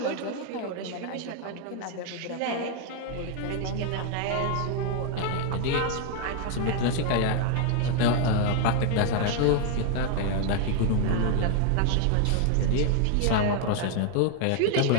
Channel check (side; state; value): both; different; correlation 0.00